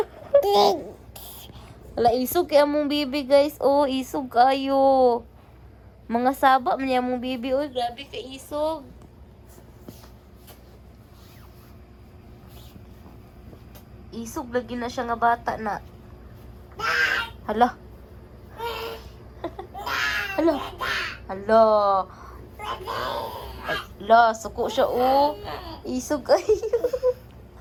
Wala isog kaya mong bibi, guys. Oh, isog kayo. Mga saba man yung mong bibi. Uy, grabe ka isog. Isog lagi na siya nga bata na. Hala. Hala. Hala. Hala, suko siya, oh. Isog kayo.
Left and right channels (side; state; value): both; identical; correlation 1.00